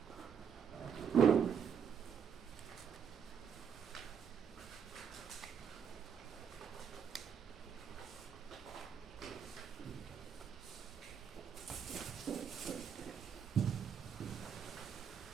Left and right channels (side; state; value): left; quieter; 7.5 dB